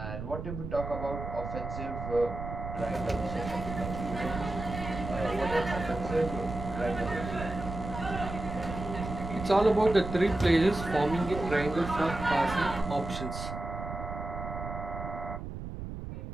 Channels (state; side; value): noise; right; rumble, 7 dB below the sound